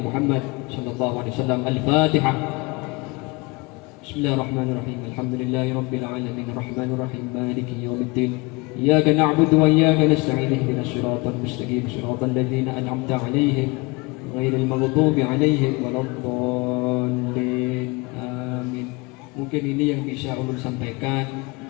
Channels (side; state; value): right; quieter; 26.2 dB